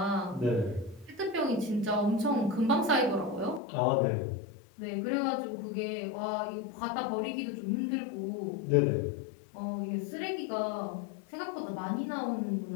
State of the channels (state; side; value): drops out; right; at 3.6 s